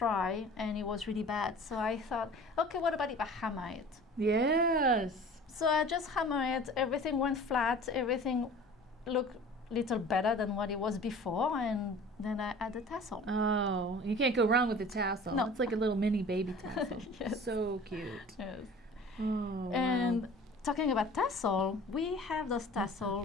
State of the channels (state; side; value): normal; both; correlation 0.44